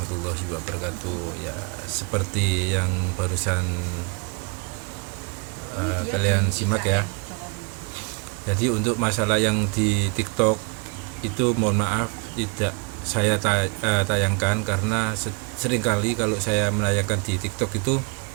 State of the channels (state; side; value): quieter; left; 32.9 dB